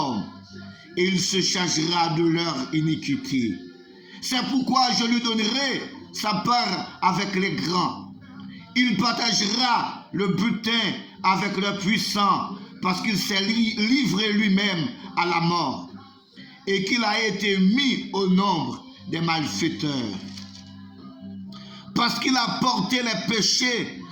et il se chargera de leur iniquité. C'est pourquoi je lui donnerai sa part avec les grands. Il partagera le butin avec les puissants parce qu'il s'est livré lui-même à la mort et qu'il a été mis au nombre des malfaiteurs. Parce qu'il a porté les péchés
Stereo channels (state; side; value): identical; both; correlation 1.00